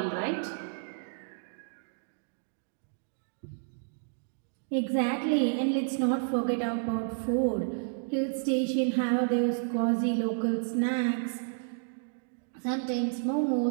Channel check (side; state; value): left; silent; digital silence